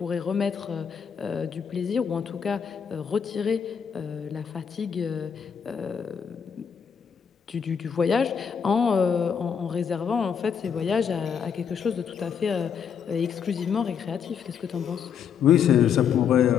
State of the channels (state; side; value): quieter; right; 7.3 dB